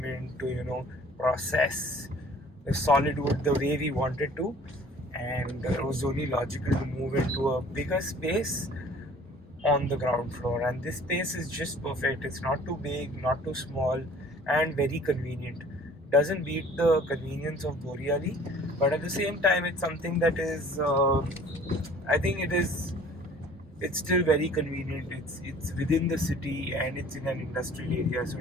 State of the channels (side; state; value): both; normal; correlation 0.51